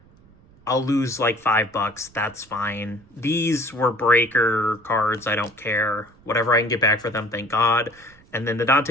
I'll lose like $5. That's fine. These were breaker cards. I don't care. Whatever I can get back for them, thank God. And then the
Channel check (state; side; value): noise; right; rumble, 28 dB below the sound